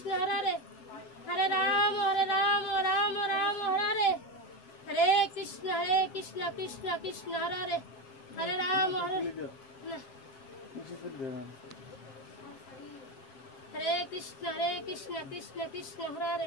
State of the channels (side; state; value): right; late; 7.5 ms